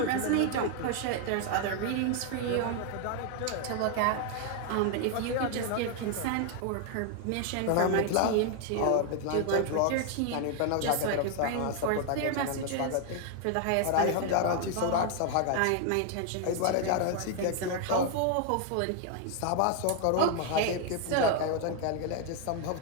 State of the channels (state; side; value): different; both; correlation 0.00